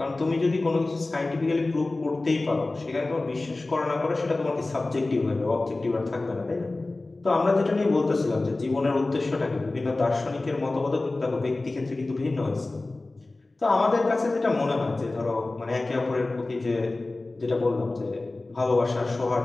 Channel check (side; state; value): right; quieter; 3.1 dB